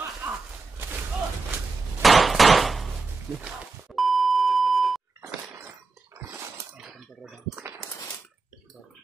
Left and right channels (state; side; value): quieter; left; 4.1 dB